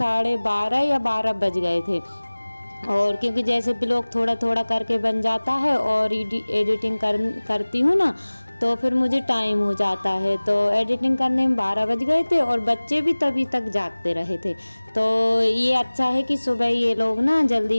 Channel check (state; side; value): inverted; both; correlation -1.00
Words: या 12 बज गए थे। और क्योंकि जैसे भी लोग थोड़ा थोड़ा करके बन जाता है और एडिटिंग करती हूँ ना, तो फिर मुझे टाइम हो जाता है। तो एडिटिंग करने में 12 बज गए थे और बच्चे भी तभी तक जागते रहे थे। तो ये अच्छा है कि सुबह ये लोग ना